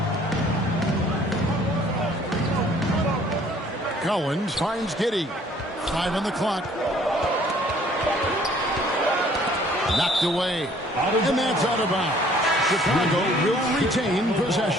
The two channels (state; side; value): normal; both; correlation 0.57